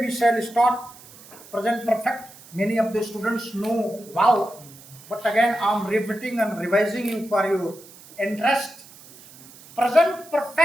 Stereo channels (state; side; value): noise; right; hiss, 21 dB below the sound